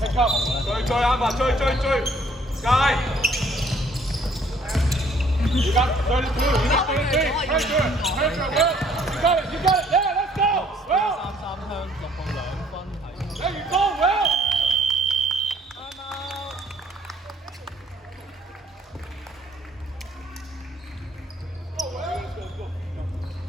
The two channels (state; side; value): normal; both; correlation 0.62